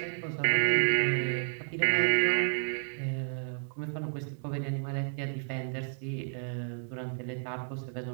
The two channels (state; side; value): silent; left; 57 dB below the other